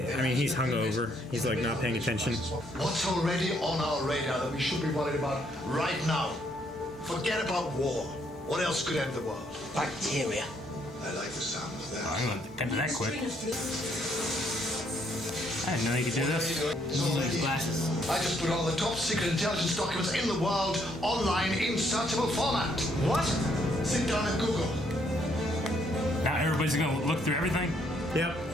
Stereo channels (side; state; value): both; normal; correlation 0.70